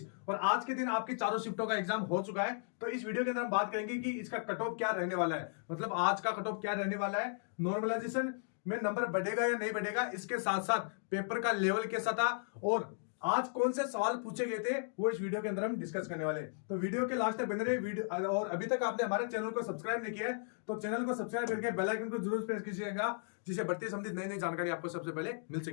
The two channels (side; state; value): right; silent; digital silence